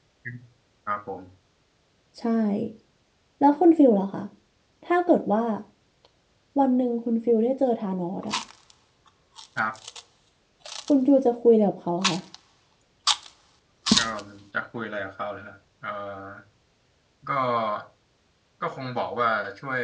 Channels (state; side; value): identical; both; correlation 1.00